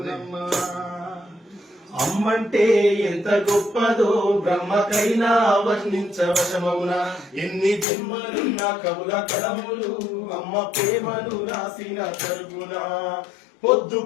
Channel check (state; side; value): drops out; right; at 7.9 s